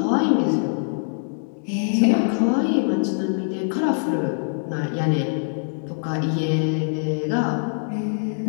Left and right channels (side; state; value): right; silent; digital silence